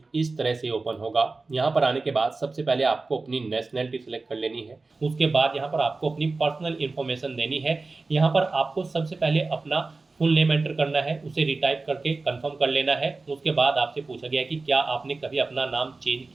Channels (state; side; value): quieter; left; 3.7 dB